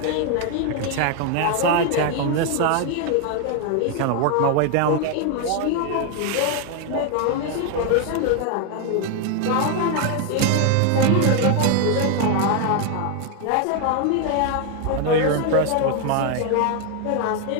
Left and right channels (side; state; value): both; different; correlation 0.01